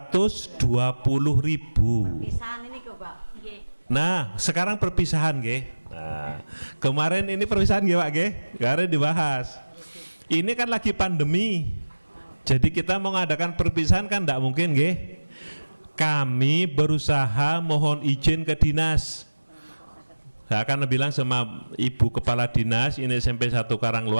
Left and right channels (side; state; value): both; inverted; correlation -1.00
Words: Perpisahan ini kok Pak. Nggih. Nah, sekarang perpisahan nggih. Nah, kemarin ini perpisahan nggih Pak nggih? Kemarin dibahas. Ini kan lagi pandemi. Jadi kita mau mengadakan perpisahan kan tidak mungkin nggih. Kami berusaha mohon izin ke dinas. Saya akan bilang sama Ibu Kepala Dinas, ini SMP 1